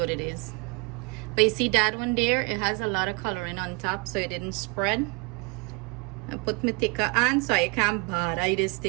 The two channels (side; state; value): left; quieter; 30.3 dB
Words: it is. But you see that one there? It has a lot of coloring on top, so it didn't spread. I put my thicker on so I can't bother this